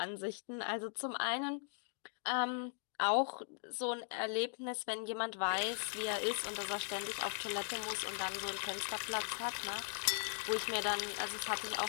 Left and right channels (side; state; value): right; silent; 52 dB below the other